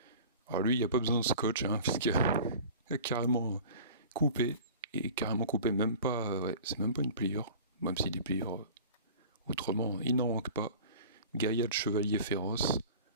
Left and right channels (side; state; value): both; inverted; correlation -0.40